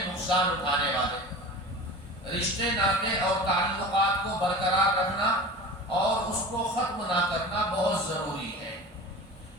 اٹھانے والے. رشتے ناطے اور تعلقات کو برقرار رکھنا اور اس کو ختم نہ کرنا بہت ضروری ہے.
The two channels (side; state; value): both; normal; correlation 0.35